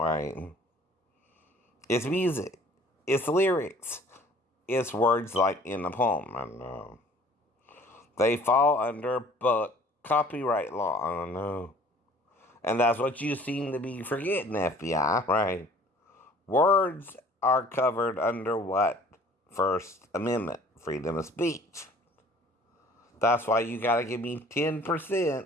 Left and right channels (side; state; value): both; normal; correlation 0.52